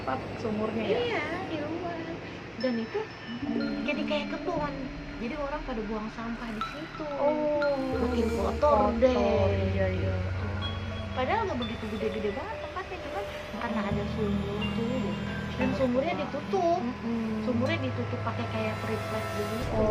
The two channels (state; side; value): identical; both; correlation 1.00